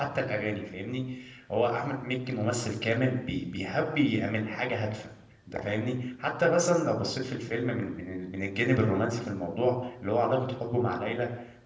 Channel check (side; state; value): both; identical; correlation 1.00